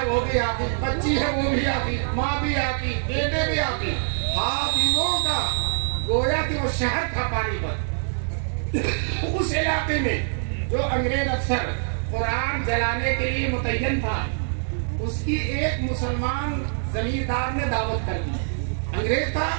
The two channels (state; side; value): silent; left; digital silence